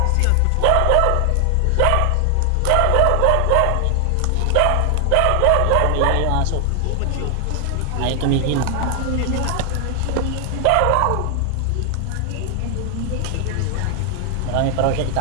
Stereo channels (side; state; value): both; different; correlation 0.00